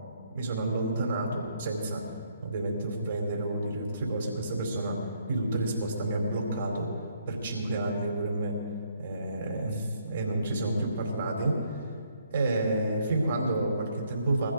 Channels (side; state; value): both; inverted; correlation -0.70